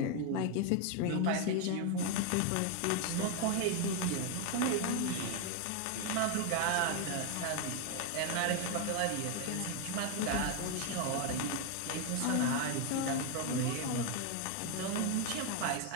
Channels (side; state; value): both; different; correlation 0.01